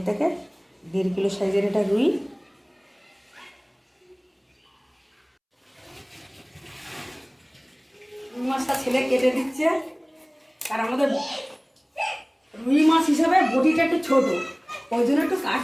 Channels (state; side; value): identical; both; correlation 1.00